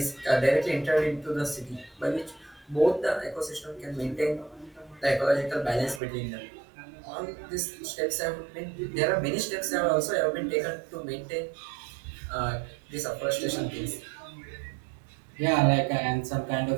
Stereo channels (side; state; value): left; drops out; at 6.0 s